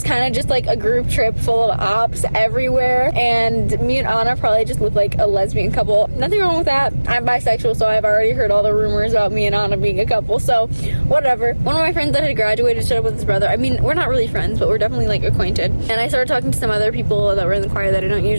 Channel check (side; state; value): both; inverted; correlation -1.00